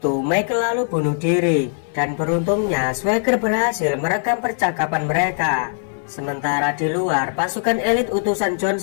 Michael lalu bunuh diri. Dan beruntungnya Swagger berhasil merekam percakapan mereka. Sementara di luar, pasukan elit utusan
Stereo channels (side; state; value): right; silent; 58 dB below the other